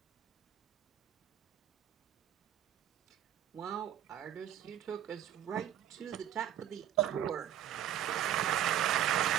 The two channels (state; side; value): quieter; left; 10.8 dB